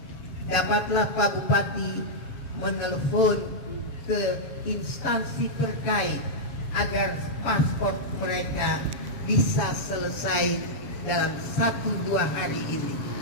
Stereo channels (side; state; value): right; late; 7.4 ms